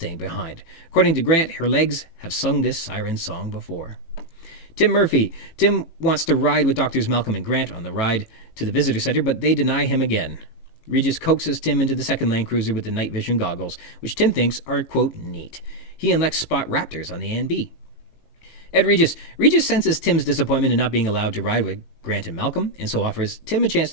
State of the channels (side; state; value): right; late; 18 ms